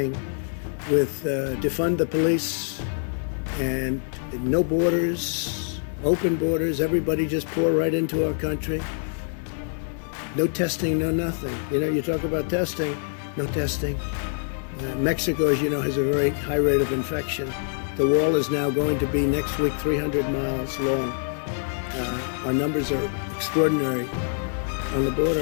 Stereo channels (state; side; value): silent; right; digital silence